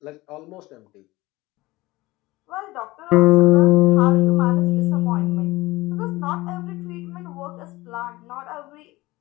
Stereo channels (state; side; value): quieter; right; 20.1 dB